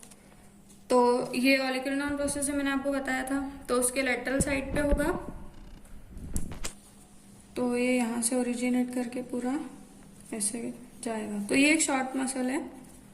तो ये ओलिक्रिनॉन प्रोसेस है, मैंने आपको बताया था, तो उसके लेटरल साइड पे होगा। तो ये यहाँ से ओरिजिनेट करके पूरा ऐसे जाएगा। तो ये एक शॉर्ट मसल है।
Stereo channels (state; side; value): identical; both; correlation 1.00